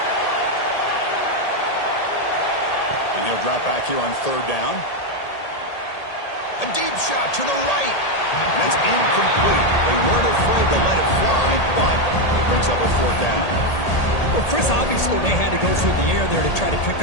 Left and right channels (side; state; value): right; late; 1.8 ms